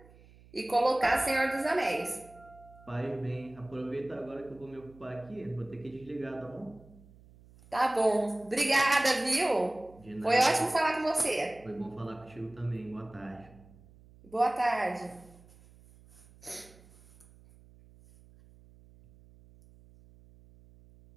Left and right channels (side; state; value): right; noise; hum, 24 dB below the sound